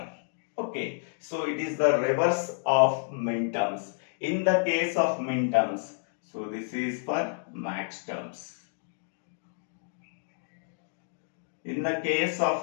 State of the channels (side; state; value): right; silent; digital silence